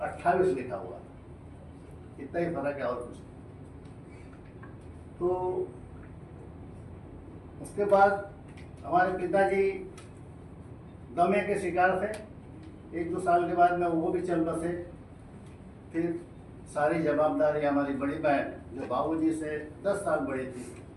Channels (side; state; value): both; identical; correlation 1.00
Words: लिखा हुआ। इतना ही फर्क है और कुछ। तो उसके बाद हमारे पिताजी दमे के शिकार थे। 1-2 साल के बाद में वो भी चल बसे फिर सारी जवाबदारी हमारी बड़ी बहन जो बाबूजी से 10 साल बड़ी थी,